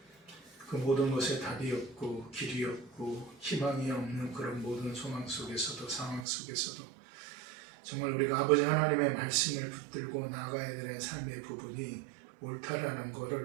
그 모든 것에 답이 없고 길이 없고 희망이 없는 그런 모든 소망 속에서도 상황 속에서도 정말 우리가 아버지 하나님의 말씀을 붙들고 나아가야 되는 삶의 부분이 옳다라는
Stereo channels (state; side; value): drops out; left; at 6.2 s